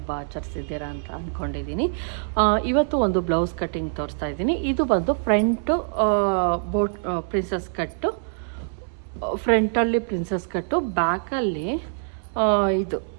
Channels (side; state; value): left; silent; 62 dB below the other